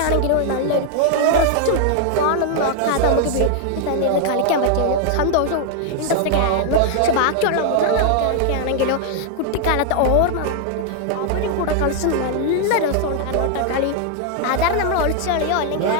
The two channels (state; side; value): different; both; correlation 0.00